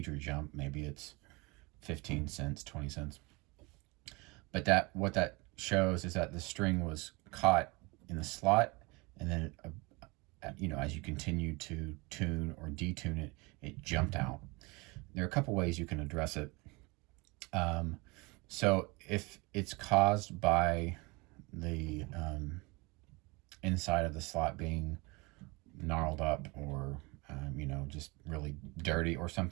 jump. Maybe it's 15 cents, 20 cents. But what that shows is that the string was caught in the slot, and then as you continue to tune or detune it, it jumped out. There are a couple ways you can address it. So if it's caused by the inside of the slot being gnarled up, or just really dirty or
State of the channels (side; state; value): left; quieter; 26.1 dB